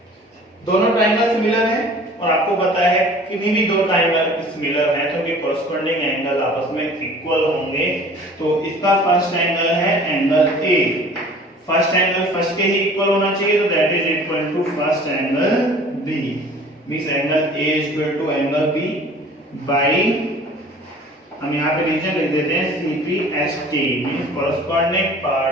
दोनों ट्रायंगल सिमिलर हैं और आपको पता है किन्हीं भी दो ट्रायंगल सिमिलर हैं तो उनके कॉरस्पॉन्डिंग एंगल आपस में इक्वल होंगे। तो इसका फर्स्ट एंगल है angle A, first angle first के ही इक्वल होना चाहिए, तो that is equal to first angle B, means angle A is equal to angle B by, हम यहाँ पे रीजन लिख देते हैं CPST, means corresponding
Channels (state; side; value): normal; both; correlation 0.47